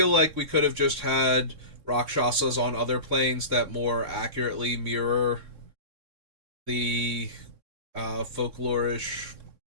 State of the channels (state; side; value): late; left; 3.6 ms